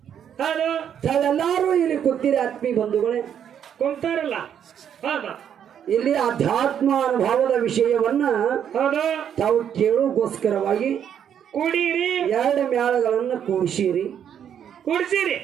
ಹೌದು ತಾವೆಲ್ಲರೂ ಇಲ್ಲಿ ಕೂತಿರಿ ಆತ್ಮೀಯ ಬಂಧುಗಳೇ, ಕುಂತಾರಲ್ಲ. ಹೌದು ಇಲ್ಲಿ ಅಧ್ಯಾತ್ಮ ಅನುಭವದ ವಿಷಯವನ್ನ ಹೌದು ತಾವು ಕೇಳೋಗೋಸ್ಕರವಾಗಿ ಕುಡೀರಿ, ಎರಡು ಮೇಳಗಳನ್ನು ಕೂಡಿಸಿರಿ. ಕುಡ್ಸಿರಿ.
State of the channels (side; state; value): left; quieter; 8.9 dB